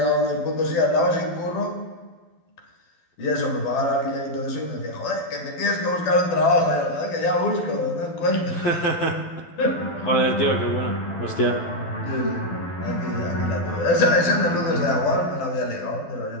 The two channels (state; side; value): late; right; 12 ms